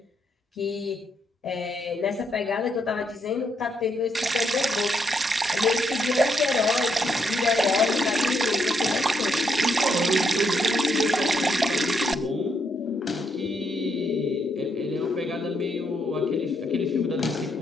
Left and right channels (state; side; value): normal; both; correlation 0.76